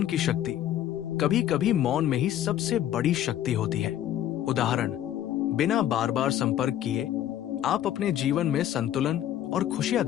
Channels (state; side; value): quieter; right; 11.8 dB